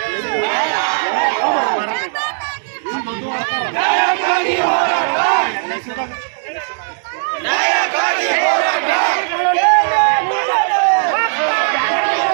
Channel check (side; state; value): left; silent; digital silence